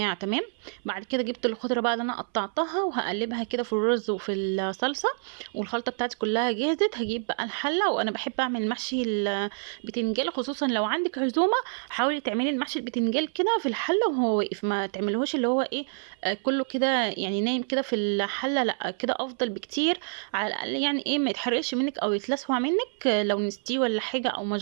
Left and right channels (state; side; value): silent; left; 60 dB below the other